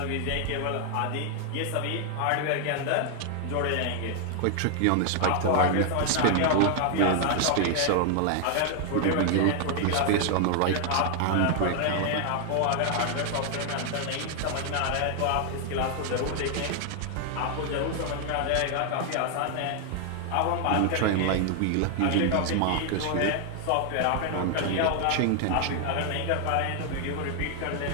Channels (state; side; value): different; both; correlation 0.00